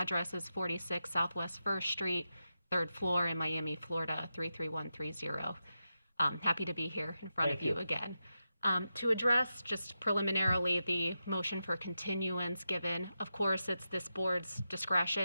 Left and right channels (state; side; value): inverted; both; correlation -0.89